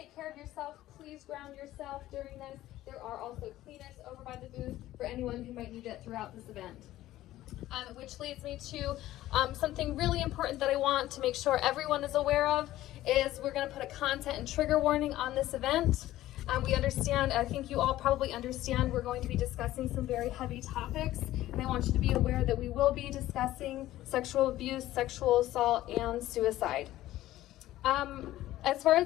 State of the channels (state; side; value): quieter; right; 14.9 dB